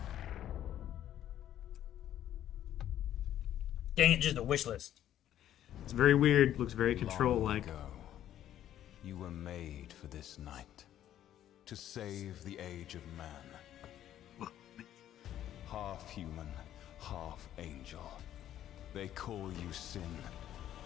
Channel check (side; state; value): right; quieter; 11.5 dB